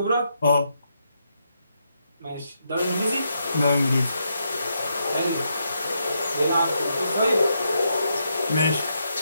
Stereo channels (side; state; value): both; inverted; correlation -0.80